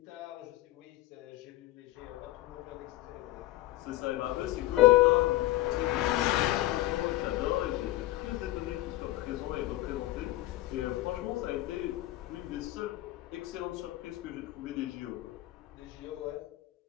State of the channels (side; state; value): right; quieter; 17.0 dB